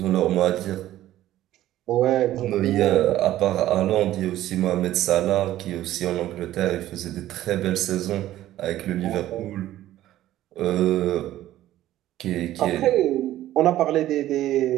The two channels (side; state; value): left; quieter; 13.9 dB